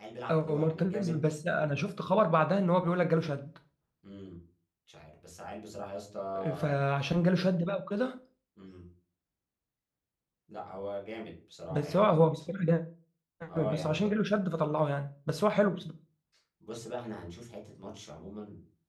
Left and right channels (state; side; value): identical; both; correlation 1.00